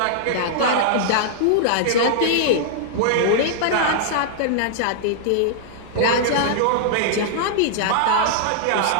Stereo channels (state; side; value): different; both; correlation -0.01